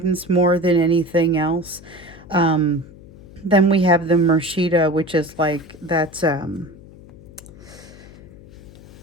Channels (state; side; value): noise; left; hum, 20 dB below the sound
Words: more than anything else. Um, then we have the Murshida, which is like that's